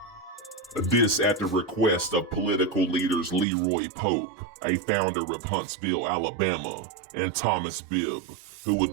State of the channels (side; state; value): left; drops out; at 3.5 s